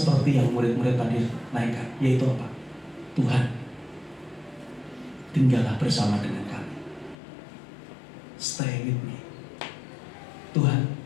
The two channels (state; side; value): drops out; right; at 7.2 s